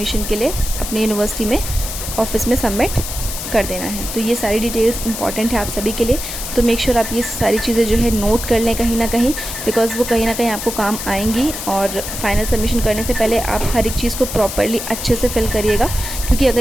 के लिए अपनी यूनिवर्सिटी में ऑफिस में सबमिट कर देना है। तो ये सारी डिटेल्स इंपॉर्टेंट है आप सभी के लिए, तो मेक श्योर आप ये सारी चीज़ें जो है नोट कर लें कहीं ना कहीं, बिकॉज़ वो कहीं ना कहीं आपको काम आएंगी। और फाइनल सबमिशन करने से पहले आप हर एक चीज़ को प्रॉपरली अच्छे से फिल करिएगा, क्योंकि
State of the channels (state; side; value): noise; left; hiss, 7 dB below the sound